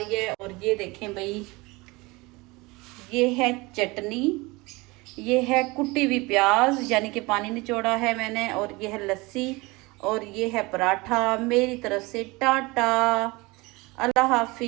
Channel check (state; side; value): quieter; left; 23.8 dB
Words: है। और ये देखें भाई, ये है चटनी, ये है कुटी हुई प्याज यानी कि पानी निचोड़ा है मैंने, और ये है लस्सी, और ये है पराठा। मेरी तरफ से टाटा, अल्लाह